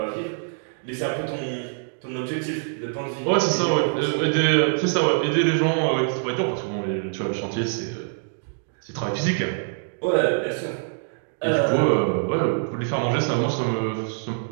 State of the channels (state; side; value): silent; left; 62 dB below the other